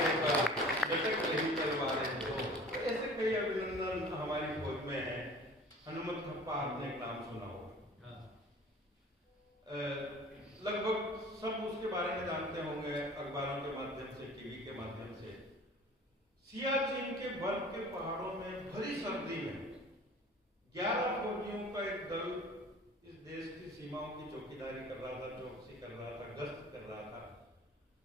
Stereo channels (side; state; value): both; normal; correlation 0.44